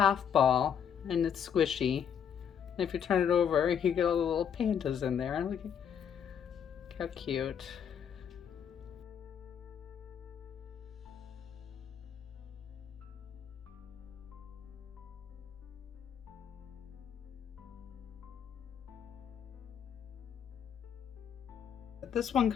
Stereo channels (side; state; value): right; quieter; 8.1 dB